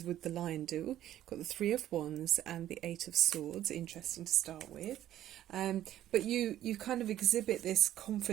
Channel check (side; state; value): left; quieter; 12.5 dB